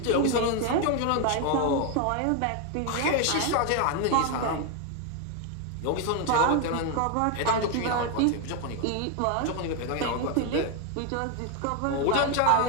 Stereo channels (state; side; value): different; both; correlation 0.01